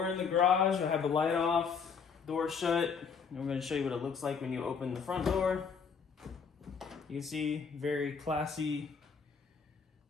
in the garage, I have the light off, door shut, and we're gonna show you what it looks like when you open the front door. You can see, very classy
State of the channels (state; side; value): quieter; right; 6.0 dB